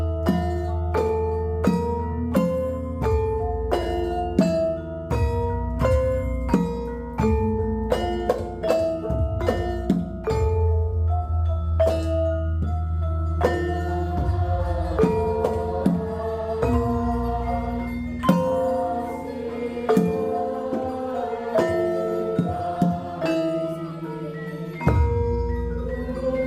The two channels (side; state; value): both; identical; correlation 1.00